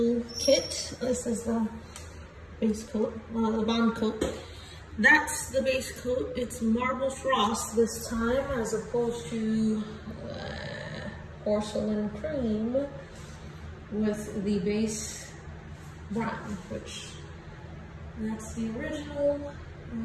kit. This is the base coat, the bond coat. That's the base coat. It's marble frost this time as opposed to porcelain cream with the base brown, which that's the original.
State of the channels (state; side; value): identical; both; correlation 1.00